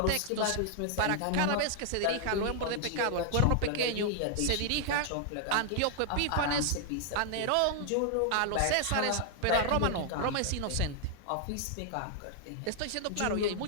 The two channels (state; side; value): different; both; correlation 0.00